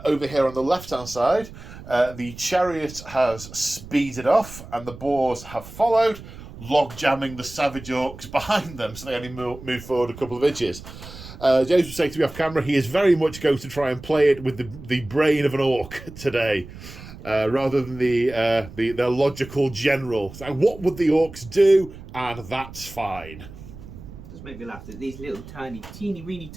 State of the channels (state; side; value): noise; right; rumble, 15 dB below the sound